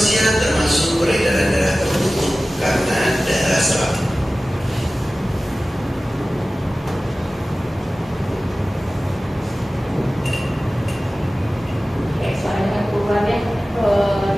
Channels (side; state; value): both; normal; correlation 0.96